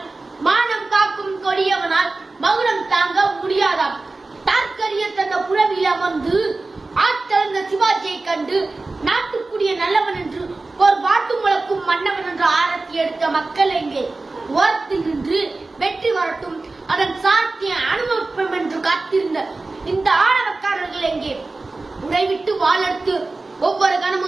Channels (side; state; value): left; quieter; 3.4 dB